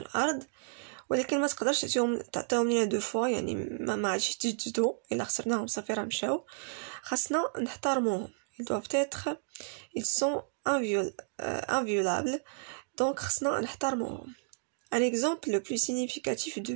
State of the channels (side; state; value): left; silent; digital silence